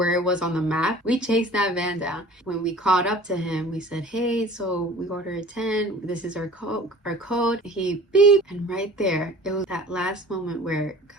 it was on the map. We chased that van down. When we caught up to him, we said, hey, so we ordered 10. This is our code. He beep. And right there, it was that last moment where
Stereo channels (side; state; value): both; normal; correlation 0.46